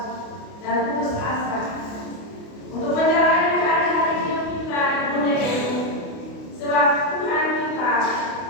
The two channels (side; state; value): right; late; 28 ms